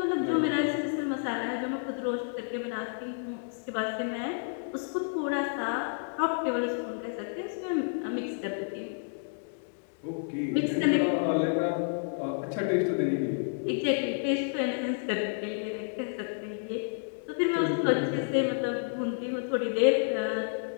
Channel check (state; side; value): silent; right; digital silence